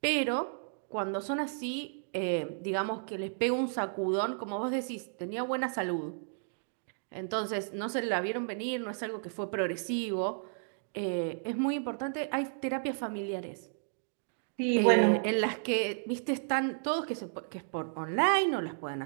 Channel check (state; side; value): silent; left; digital silence